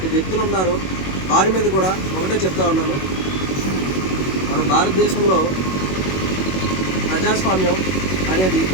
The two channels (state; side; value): late; right; 21 ms